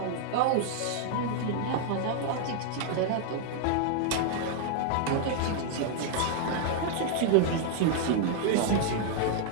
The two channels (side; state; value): both; different; correlation -0.01